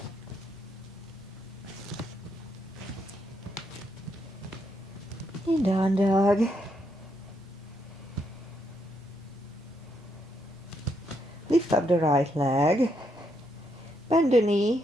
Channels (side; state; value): both; normal; correlation 0.77